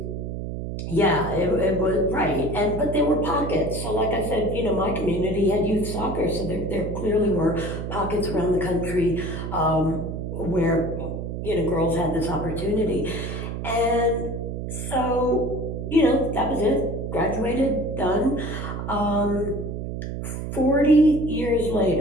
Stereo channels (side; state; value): right; noise; hum, 5 dB below the sound